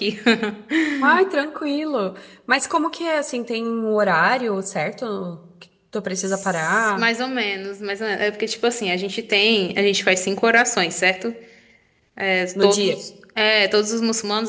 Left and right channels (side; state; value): both; identical; correlation 1.00